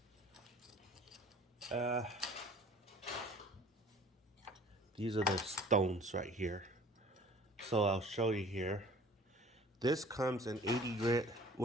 these are the stones right here. So I'll show you here. This comes in 80 grit,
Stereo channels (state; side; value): normal; both; correlation 0.49